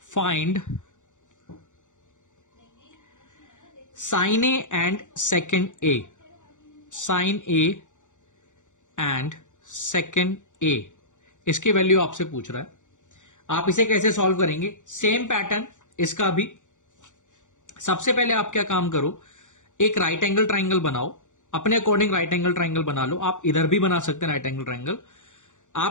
find sin A and second A. Sin A and second A, इसकी वैल्यू आपसे पूछ रहा है। आप इसे कैसे सॉल्व करेंगे? सेम पैटर्न इसका भी। सबसे पहले आप क्या काम करो, एक राइट एंगल ट्राइंगल बनाओ, अपने अकॉर्डिंग राइट एंगल ट्राइंगल बना लो। आप इधर भी बना सकते हैं राइट एंगल ट्राइंगल।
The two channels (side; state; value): right; late; 0.86 ms